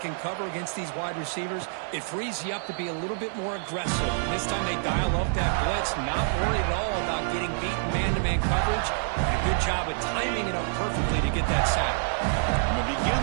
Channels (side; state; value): left; silent; 59 dB below the other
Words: can cover against these wide receivers, it frees you up to be a little bit more aggressive. And this time they dial up that blitz, not worried at all about getting beaten man-to-man coverage. And a good job of timing it up perfectly to get that sack. And to begin